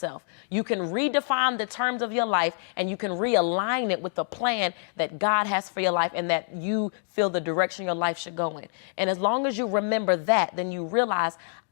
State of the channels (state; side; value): silent; right; digital silence